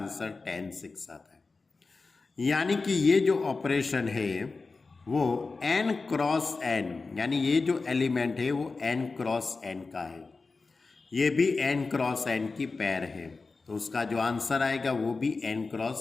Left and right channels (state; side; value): quieter; right; 4.0 dB